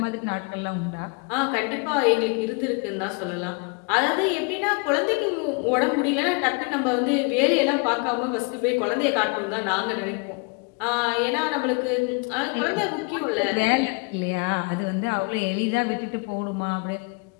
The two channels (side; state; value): right; quieter; 31.9 dB